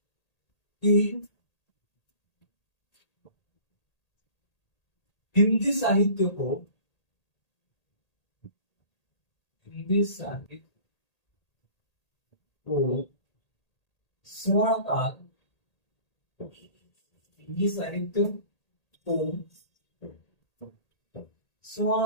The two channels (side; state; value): right; late; 1.8 ms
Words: कि हिंदी साहित्य को स्वर्ण काल, हिंदी साहित्य को